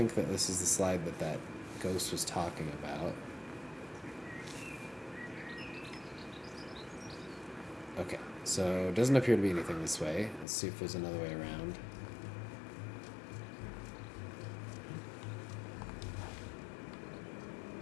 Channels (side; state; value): right; drops out; at 10.5 s